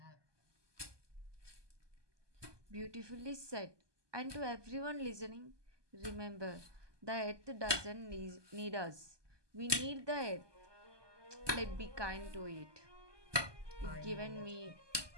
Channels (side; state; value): left; late; 1.2 ms